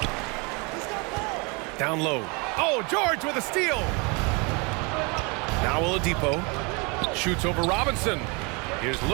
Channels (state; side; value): quieter; left; 30.4 dB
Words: Down low. Oh, George with a steal. Now Oladipo shoots over Robinson. Here's